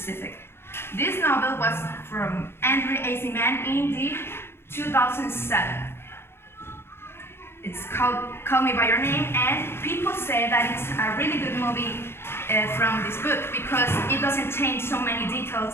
This novel was from Andrew Aziman in the 2007. It's called Call Me By Your Name, and people say that it's a really good movie from this book because it doesn't change so many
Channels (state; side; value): late; right; 0.12 ms